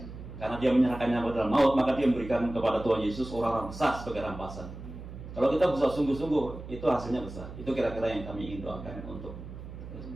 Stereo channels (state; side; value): noise; right; hum, 12 dB below the sound